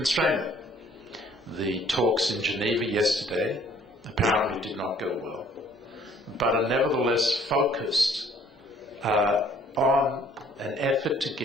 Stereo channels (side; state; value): both; normal; correlation 0.58